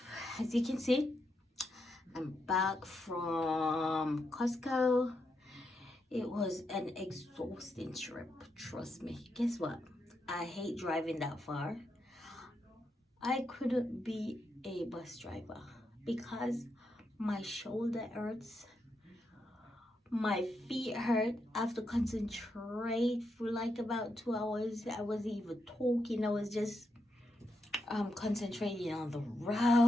As you can see, I'm back from Costco. It was an exhausting trip, trust me. Guess what? I hate driving that far. I couldn't be a bus driver because my shoulder hurts, my feet hurt. I have to concentrate for like about 2 hours. I wasn't even talking, I was just concentrating on the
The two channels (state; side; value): normal; both; correlation 0.83